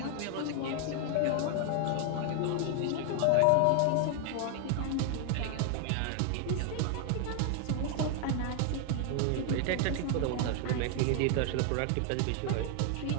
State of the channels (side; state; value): both; different; correlation 0.00